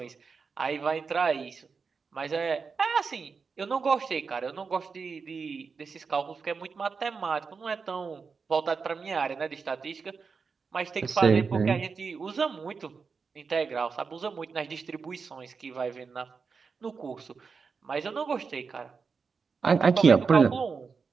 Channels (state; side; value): quieter; left; 5.2 dB